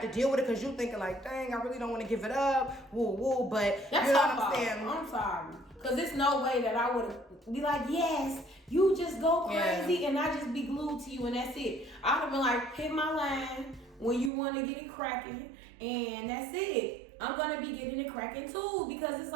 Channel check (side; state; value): left; drops out; at 14.3 s